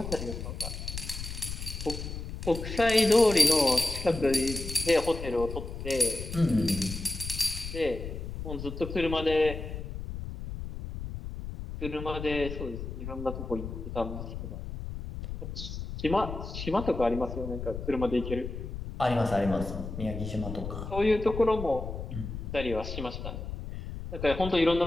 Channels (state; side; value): noise; left; rumble, 7 dB below the sound